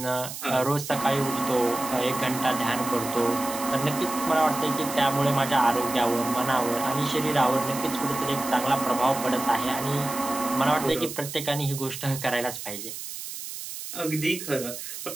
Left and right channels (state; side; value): noise; right; hiss, 9 dB below the sound